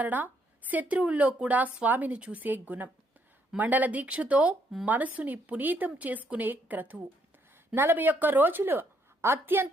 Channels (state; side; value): normal; both; correlation 0.72